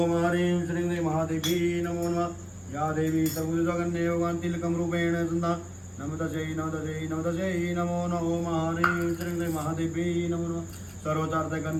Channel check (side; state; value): both; identical; correlation 1.00